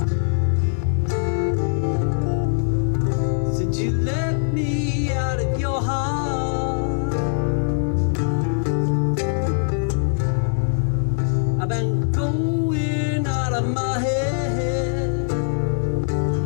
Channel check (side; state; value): right; silent; digital silence